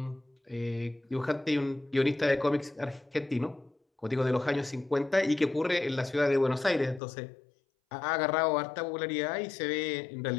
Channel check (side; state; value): right; drops out; at 7.0 s